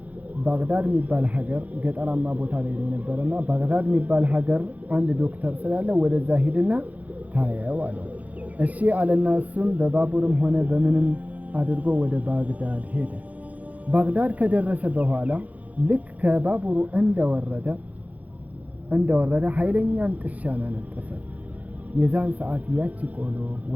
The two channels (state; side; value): late; left; 0.074 ms